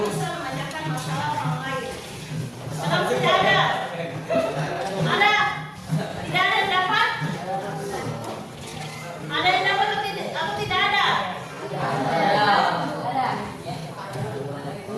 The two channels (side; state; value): both; identical; correlation 1.00